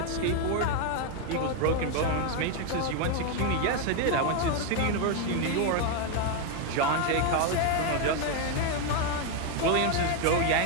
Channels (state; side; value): different; both; correlation 0.01